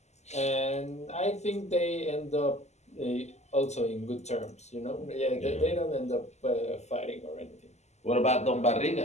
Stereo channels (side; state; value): right; late; 0.33 ms